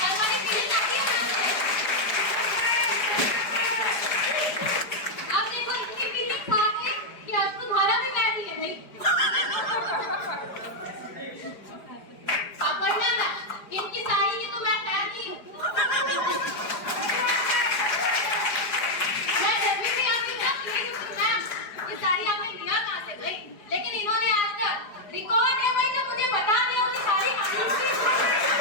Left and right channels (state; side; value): late; right; 4.9 ms